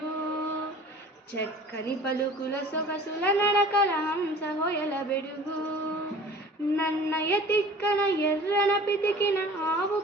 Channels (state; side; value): normal; both; correlation 0.45